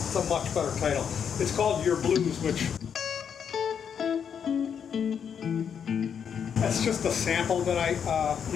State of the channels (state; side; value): quieter; right; 7.6 dB